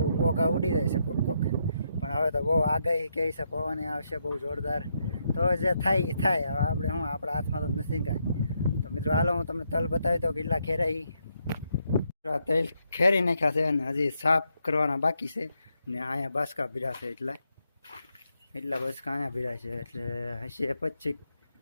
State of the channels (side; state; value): both; inverted; correlation -0.79